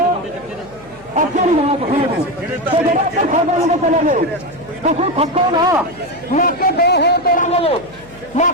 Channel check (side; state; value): right; noise; hum, 24 dB below the sound